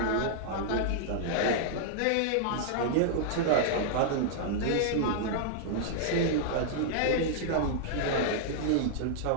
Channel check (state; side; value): different; both; correlation -0.01